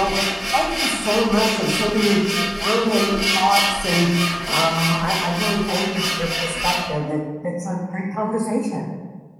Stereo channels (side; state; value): both; identical; correlation 1.00